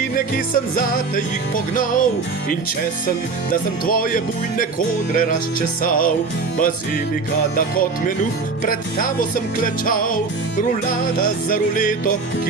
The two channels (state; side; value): quieter; left; 4.2 dB